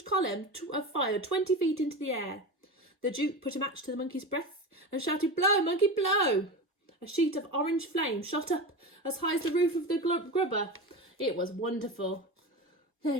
column of fire 20 feet into the air. The Duke put a match to the monkey's breath and shouted, "Blow, monkey, blow!" A sheet of orange flame shot up as high as the roof of the grubber. It was wonderful. There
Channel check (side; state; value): both; normal; correlation 0.24